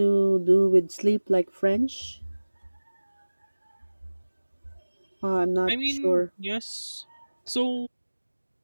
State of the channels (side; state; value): both; inverted; correlation -1.00